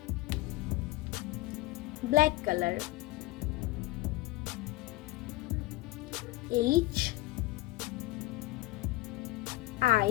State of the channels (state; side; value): quieter; right; 19.1 dB